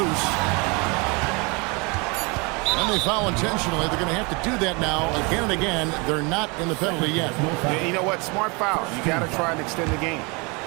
And they foul intentionally. They're going to have to do that now again and again. They're not in the penalty yet. Yeah, you know what? Smart foul. You got to try and extend the game.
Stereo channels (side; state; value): left; quieter; 29.0 dB